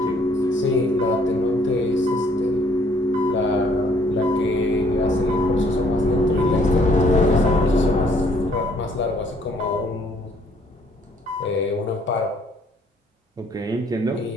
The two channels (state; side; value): normal; both; correlation 0.63